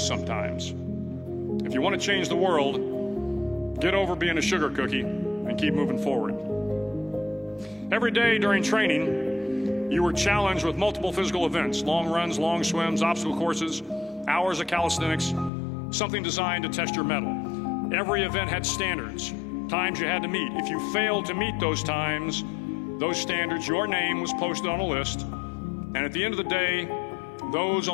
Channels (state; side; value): drops out; right; at 15.5 s